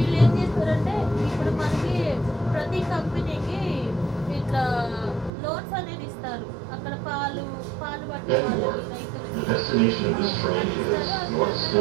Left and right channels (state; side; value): drops out; left; at 5.3 s